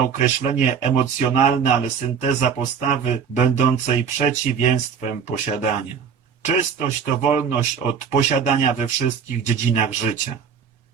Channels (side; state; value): left; quieter; 6.9 dB